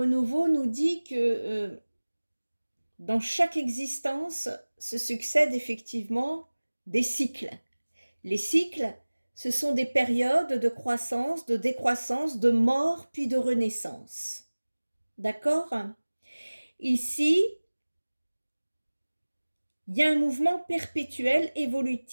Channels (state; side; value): inverted; both; correlation -1.00